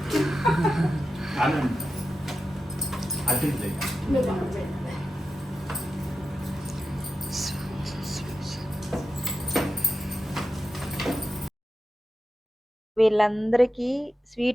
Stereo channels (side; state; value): both; normal; correlation 0.90